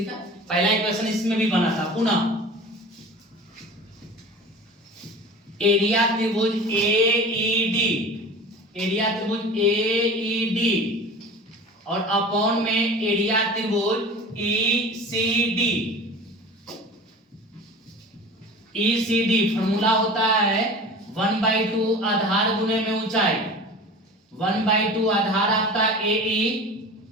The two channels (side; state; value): both; normal; correlation 0.37